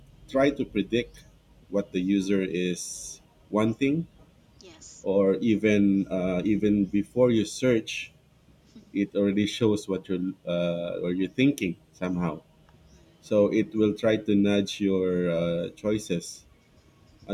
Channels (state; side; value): identical; both; correlation 1.00